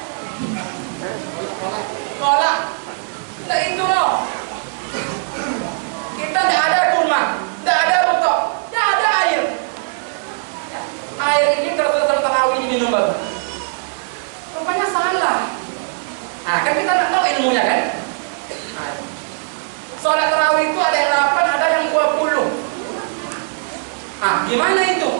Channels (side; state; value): left; silent; digital silence